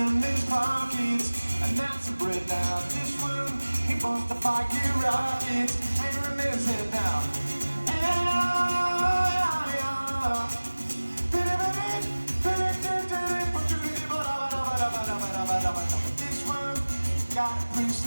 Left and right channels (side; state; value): both; inverted; correlation -1.00